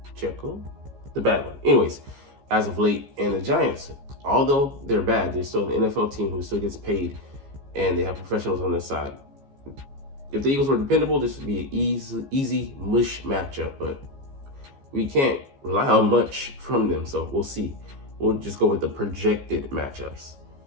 Jekyll, the bad one. Anyways, as of late, and the Giants, although they're bad, they're still an NFL team who still gets paid, and they have professionals on their side. If the Eagles were dependable, this would be an easy mush matchup, but we can't rely on much from them, so we'll see. We'll just go with the projected matchups,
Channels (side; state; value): left; late; 15 ms